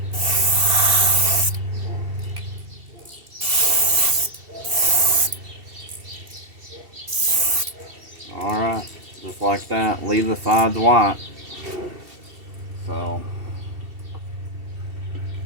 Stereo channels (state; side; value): late; left; 2.7 ms